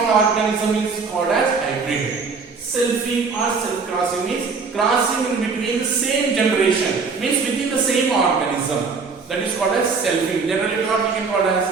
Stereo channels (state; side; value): quieter; left; 4.8 dB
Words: organism is called as hybrid. Selfing or self-crossing means crossing in between the same generation, means within the same organism. That is called as selfing. Generally what we can call